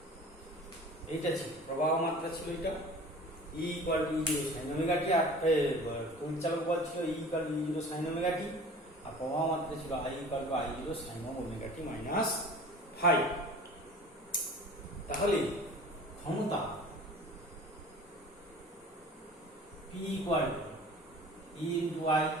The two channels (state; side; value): normal; both; correlation 0.42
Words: এইটা ছিল প্রবাহ মাত্রা, ছিল এটা E equal to E0 sin omega t, আর তড়িৎচালক বল ছিল E equal to E0 sin omega t, আর প্রবাহ মাত্রা ছিল I equal to I0 sin omega t minus phi. তাহলে ক্ষমতা P equal to E into I